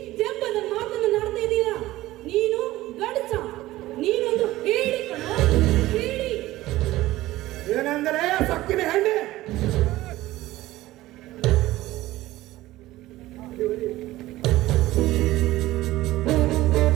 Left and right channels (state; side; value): quieter; left; 16.8 dB